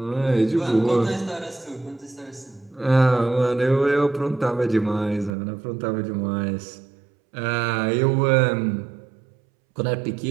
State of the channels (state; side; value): drops out; left; at 5.3 s